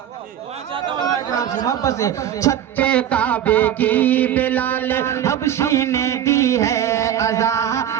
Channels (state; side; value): quieter; left; 10.4 dB